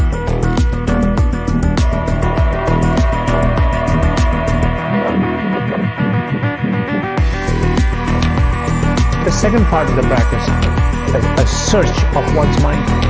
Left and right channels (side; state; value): both; identical; correlation 1.00